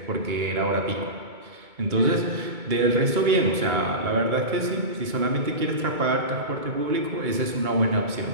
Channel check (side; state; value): left; late; 2.2 ms